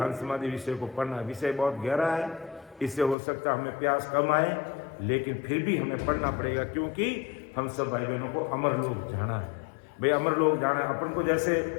समाधि विषय को पढ़ना है, विषय बहुत गहरा है, इससे हो सकता है हमें प्यास कम आए, लेकिन फिर भी हमें पढ़ना पड़ेगा, क्योंकि हम सब भाई बहनों को अमर लोक जाना है। भाई अमर लोक जाना है, अपन को जैसे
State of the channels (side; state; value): right; drops out; at 3.2 s